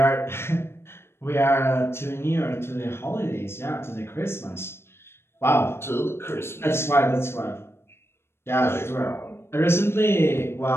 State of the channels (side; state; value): right; late; 0.12 ms